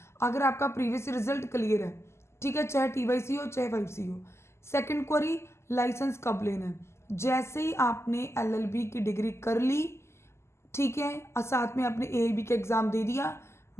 अगर आपका प्रीवियस रिजल्ट क्लियर है, ठीक है, चाहे TYC हो चाहे 5C हो। सेकंड क्वेरी, लाइसेंस कब लेना है? जैसे ही आपने एलएलबी की डिग्री कर ली, ठीक है, और साथ में आपने एआईबी का एग्ज़ाम दे दिया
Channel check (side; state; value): right; late; 0.13 ms